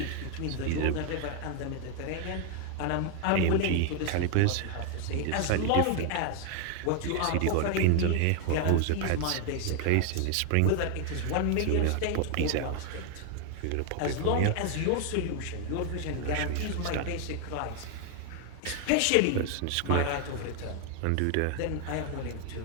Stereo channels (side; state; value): both; different; correlation 0.00